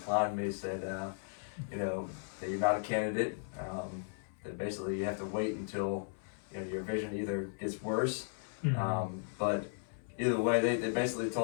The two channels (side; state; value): right; silent; 54 dB below the other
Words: me. Said, that you're not a candidate. That basically you have to wait until your vision either gets worse. But either way, they basically